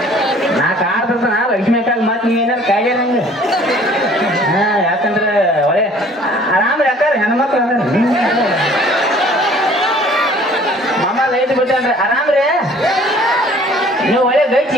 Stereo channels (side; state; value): both; normal; correlation 0.53